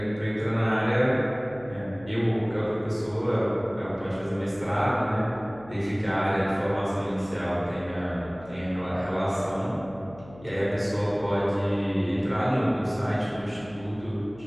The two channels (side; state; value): left; noise; hum, 20 dB below the sound